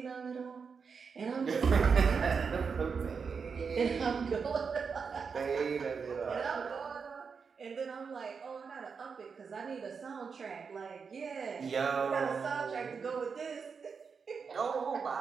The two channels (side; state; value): left; quieter; 5.7 dB